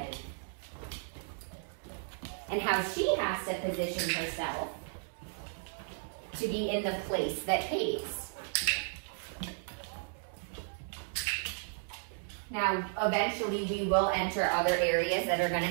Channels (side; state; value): left; silent; 55 dB below the other